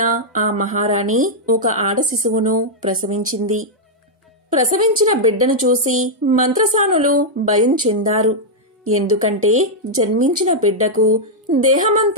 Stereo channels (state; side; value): normal; both; correlation -0.05